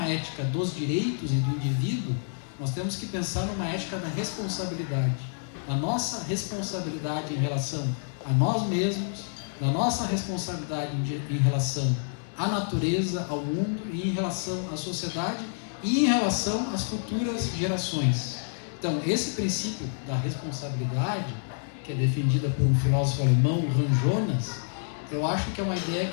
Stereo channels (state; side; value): silent; right; digital silence